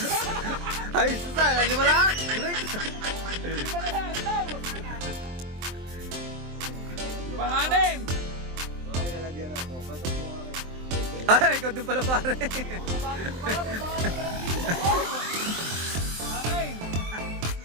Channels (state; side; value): late; left; 23 ms